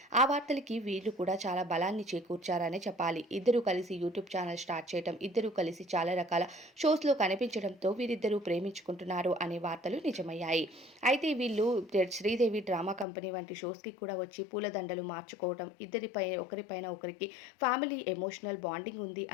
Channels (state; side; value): drops out; right; at 13.1 s